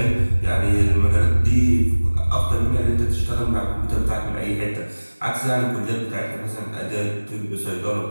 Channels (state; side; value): inverted; both; correlation -1.00